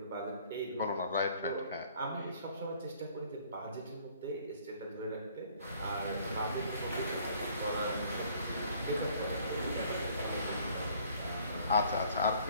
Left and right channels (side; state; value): both; inverted; correlation -0.58